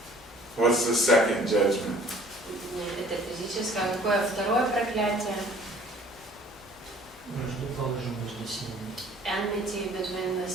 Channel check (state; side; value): noise; left; hum, 29 dB below the sound